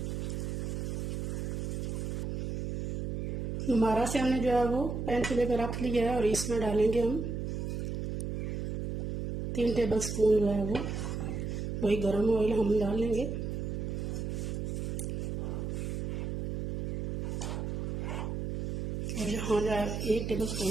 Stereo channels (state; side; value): noise; right; hum, 2 dB below the sound